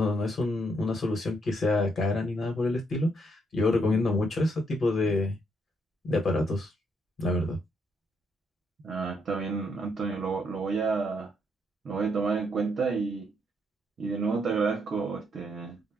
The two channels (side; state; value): both; normal; correlation 0.75